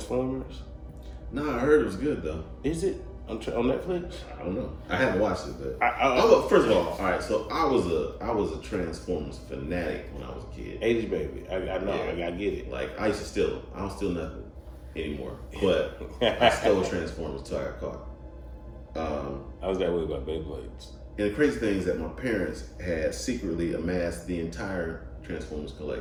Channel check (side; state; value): both; identical; correlation 1.00